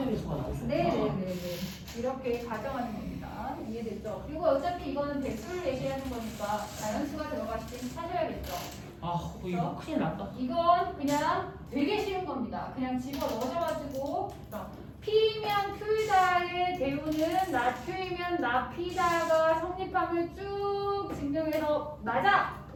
배수가 나올 수 있구나. 네네네네. 이렇게 가정하는 겁니다. 이해됐죠? 그리고 어차피 이거는 배수를 얘기하는 거니까 자연수가 들어갔을 때 찾아야겠죠. 아 이거 큰일 났다. 이건 그냥 되게 쉬운 겁니다. 그냥 집어 넣어줘가지고 P면 Q이다의 대우는 나Q이면 나P다가 성립함을 쭉 증명해서 맞아!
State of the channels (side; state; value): both; identical; correlation 1.00